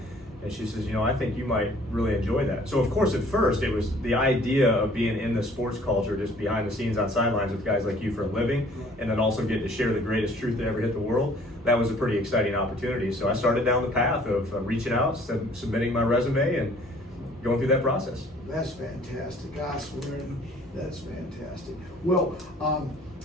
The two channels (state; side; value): normal; both; correlation 0.55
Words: And she says, I think you might really enjoy that. So of course, at first, it was the idea of being in the sports culture, just behind the scenes on sidelines with guys like you for a living, and then also get to share the greatest truth that ever hit the world. That was a pretty exciting opportunity. So I started down the path of reaching out, submitting my resume, and going through that process. That's fantastic. I swear, that's fantastic. Well,